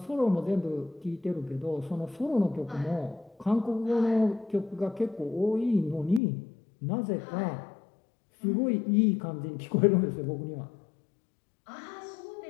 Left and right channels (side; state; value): right; drops out; at 6.2 s